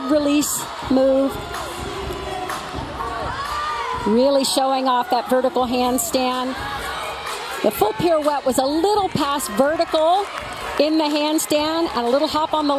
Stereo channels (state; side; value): identical; both; correlation 1.00